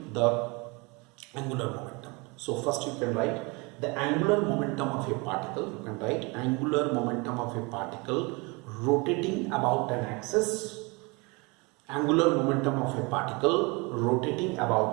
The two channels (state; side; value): quieter; left; 27.8 dB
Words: the angular momentum? So first you can write the angular momentum of a particle. You can write angular momentum of a particle rotating about an axis. Angular momentum of a particle rotating